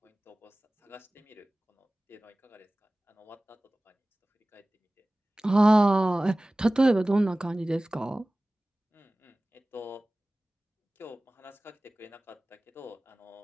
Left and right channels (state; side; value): normal; both; correlation 0.98